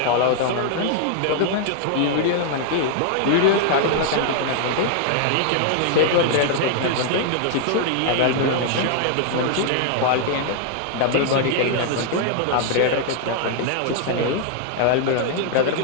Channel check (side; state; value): both; different; correlation 0.00